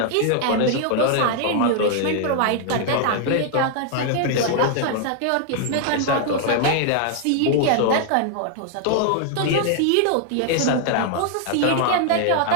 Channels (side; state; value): both; different; correlation 0.00